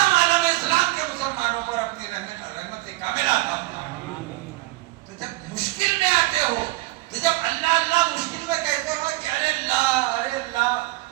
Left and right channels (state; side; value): quieter; left; 20.1 dB